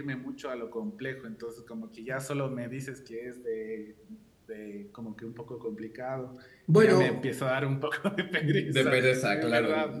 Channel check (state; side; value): identical; both; correlation 1.00